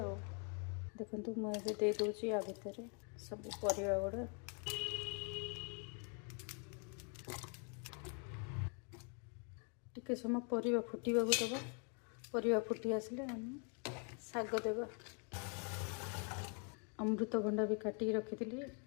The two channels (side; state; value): right; quieter; 39.3 dB